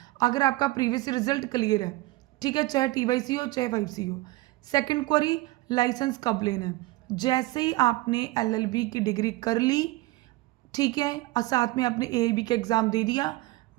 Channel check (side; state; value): left; quieter; 19.8 dB